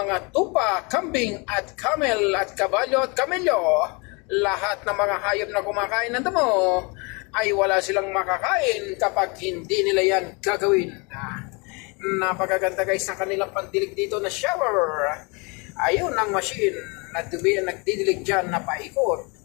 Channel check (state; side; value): quieter; right; 30.1 dB